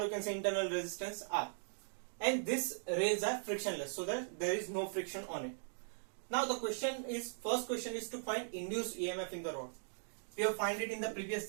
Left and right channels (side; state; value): left; silent; digital silence